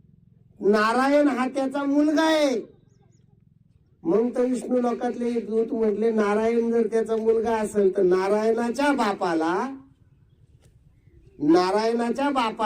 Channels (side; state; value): both; identical; correlation 1.00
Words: नारायण हा त्याचा मुलगा आहे. मग तर विष्णू लोकातले एक दूत म्हटले नारायण जर त्याचा मुलगा असेल तर नारायणाच्या